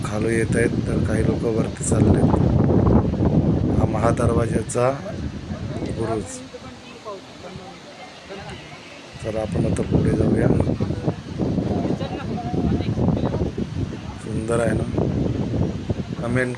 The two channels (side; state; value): both; identical; correlation 1.00